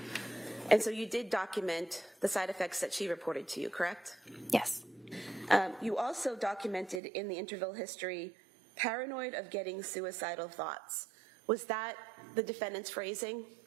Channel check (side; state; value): left; drops out; at 7.0 s